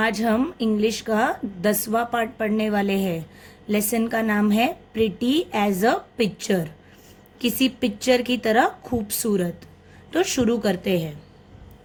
हम English का 10वां पार्ट पढ़ने वाले हैं। लेसन का नाम है प्रिटी एज अ पिक्चर, किसी पिक्चर की तरह खूबसूरत। तो शुरू करते हैं।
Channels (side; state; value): both; identical; correlation 1.00